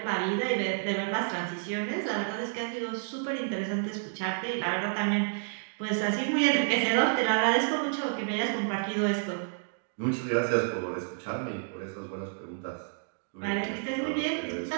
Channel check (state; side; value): silent; left; digital silence